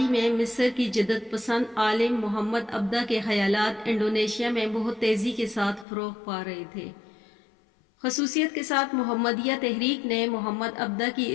میں مصر کی جدت پسند عالم محمد عبدہ کے خیالات انڈونیشیا میں بہت تیزی کے ساتھ فروغ پا رہے تھے۔ خصوصیت کے ساتھ محمدیہ تحریک نے محمد عبدہ کی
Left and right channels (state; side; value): drops out; right; at 5.9 s